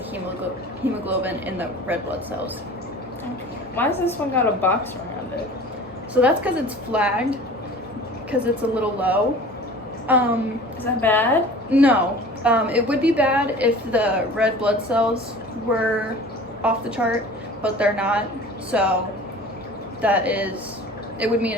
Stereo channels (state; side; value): normal; both; correlation 0.42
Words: hemoglobin in the red blood cells. Okay. Why has this one got a box around it? So that's because it's flagged, because it's a little low. Is that bad? No. It would be bad if the red blood cells were off the chart, but they're not. So it would mean